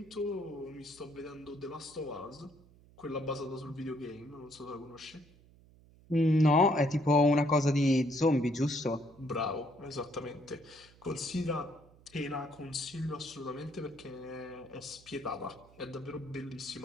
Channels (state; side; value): noise; right; hum, 26 dB below the sound